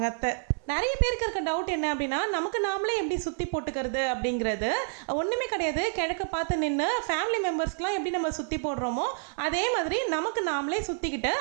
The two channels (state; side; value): silent; left; 59 dB below the other